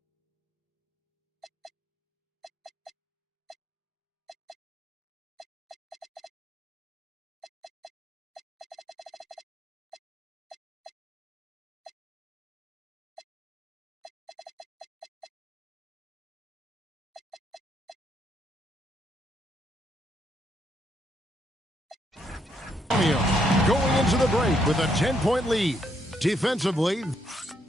Going into the break with a 10-point lead. Defensively,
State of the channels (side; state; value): both; normal; correlation 0.74